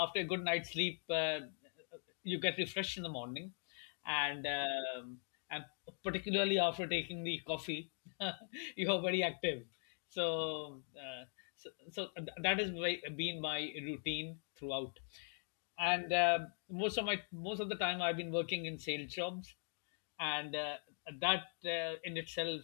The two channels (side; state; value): right; silent; 50 dB below the other